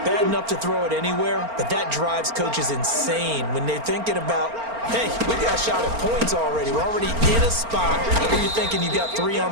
Bad enough to throw it anywhere, but that drives coaches insane when they're thinking about, hey, we got a shot at points already. We're already in a spot where you're thinking you got 3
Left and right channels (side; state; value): left; late; 4.4 ms